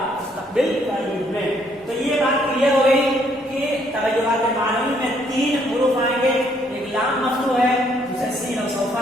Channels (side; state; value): both; normal; correlation 0.68